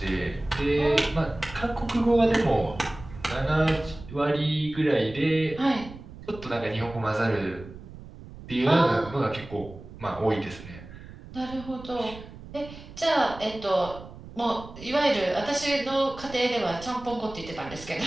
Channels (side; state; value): right; noise; rumble, 16 dB below the sound